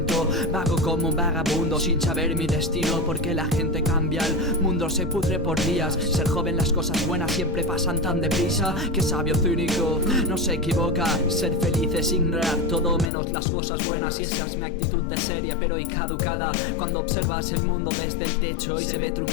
Vago como un vagabundo sin saber mi destino, porque la gente cambia, el mundo se pudre por días. Ser joven, las cosas buenas siempre pasan tan deprisa. Que sabio cínico, no se equivoca. Ser feliz es ignorar todo menos las cosas buenas. Y esa es mi actitud de seria pero y caducada. Cuando observas el mundo desde el techo y se ve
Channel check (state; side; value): drops out; right; at 13.1 s